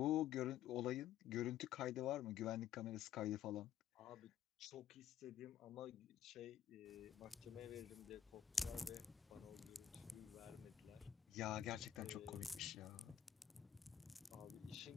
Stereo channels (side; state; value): right; quieter; 9.8 dB